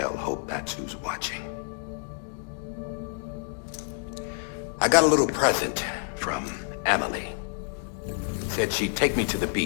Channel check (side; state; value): right; silent; 59 dB below the other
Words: hope that's who's watching. I got a little present from Amelie. Said she'd take me to the